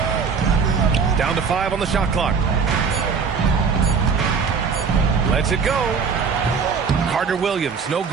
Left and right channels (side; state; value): left; quieter; 5.7 dB